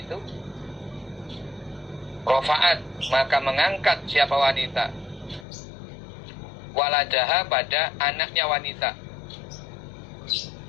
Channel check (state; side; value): drops out; right; at 5.5 s